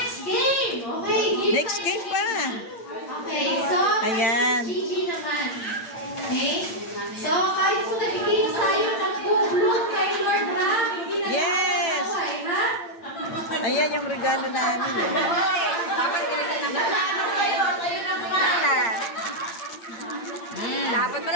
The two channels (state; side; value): late; right; 8.8 ms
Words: game! Okay, give Next game pa. Okay, so, Ayan. Gigi naman. Okay? So, kahit kung nagiging sa'yo, nag-bloom kay Lord Ram, hindi na Yes. nakakaway, ha? Ayan yung regalo namin, oh. Dapat bilisan naman. Kayo na kumain. Dapat